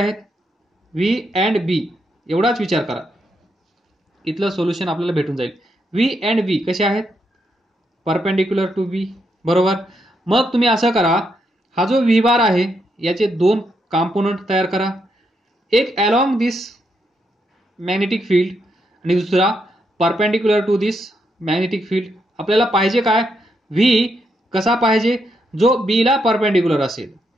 व्ही अँड बी एवढाच विचार करा. इथलं सोल्युशन आपल्याला भेटून जाईल. व्ही अँड बी कसे आहेत? Perpendicular to be. बरोबर. मग तुम्ही असं करा, हा जो व्ही बार आहे याचे दोन कॉम्पोनंट तयार करा. एक अलॉंग दिस मॅग्नेटिक फील्ड आणि दुसरा perpendicular to this magnetic field. आपल्याला पाहिजे काय? व्ही कसा पाहिजे? जो बी ला परपेंडिक्युलर असेल.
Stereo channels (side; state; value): both; normal; correlation 0.80